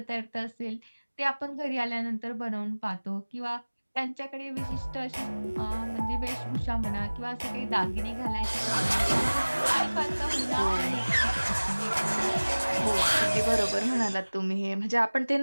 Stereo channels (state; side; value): inverted; both; correlation -1.00